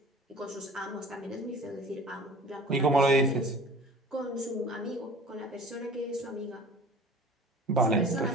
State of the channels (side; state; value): both; normal; correlation 0.42